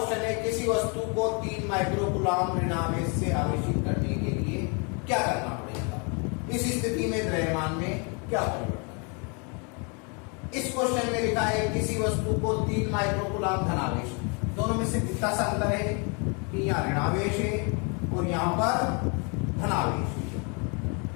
है किसी वस्तु को 3 माइक्रो कूलाम ऋणावेश से आवेशित करने के लिए क्या करना पड़ेगा? इस स्थिति में द्रव्यमान में क्या परिवर्तन है? इस क्वेश्चन में लिखा है किसी वस्तु को 3 माइक्रो कूलाम धनावेश, दोनों में से कितना सा अंतर है कि यहाँ ऋणावेश है और यहाँ पर धनावेश है।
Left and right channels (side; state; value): right; quieter; 34.4 dB